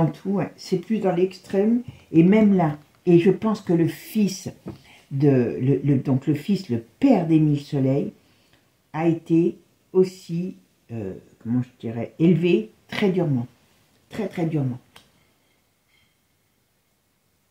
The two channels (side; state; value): both; identical; correlation 1.00